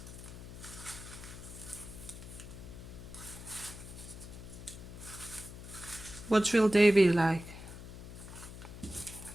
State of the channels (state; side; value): noise; left; hum, 12 dB below the sound